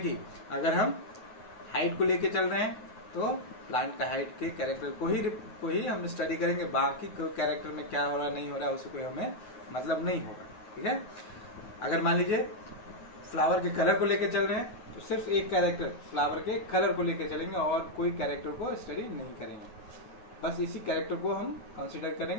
अगर हम हाइट को लेके चल रहे हैं तो प्लांट का हाइट के कैरेक्टर को ही हम स्टडी करेंगे, बाकी कैरेक्टर में क्या हो रहा नहीं हो रहा उससे कोई हमें मतलब नहीं होगा। ठीक है, अगर मान लीजिए फ्लावर के कलर को लेके चल रहे हैं तो सिर्फ एक कैरेक्टर फ्लावर के कलर को लेके चलेंगे और कोई कैरेक्टर को स्टडी नहीं करेंगे, बस इसी कैरेक्टर को हम कंसीडर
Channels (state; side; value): late; right; 9.4 ms